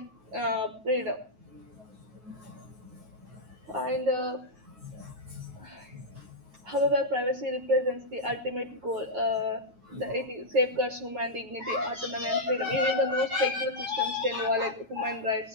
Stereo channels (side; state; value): left; late; 9.3 ms